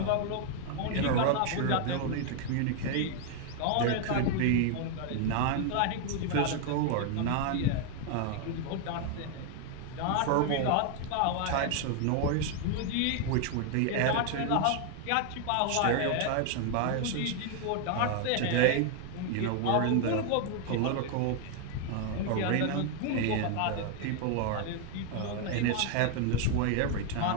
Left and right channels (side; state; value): both; different; correlation 0.00